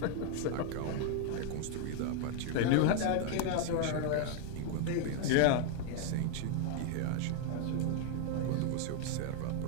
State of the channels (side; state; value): both; different; correlation 0.00